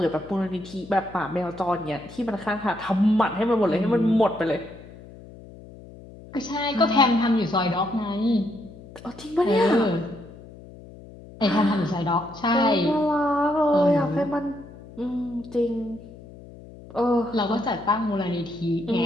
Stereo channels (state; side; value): noise; left; hum, 18 dB below the sound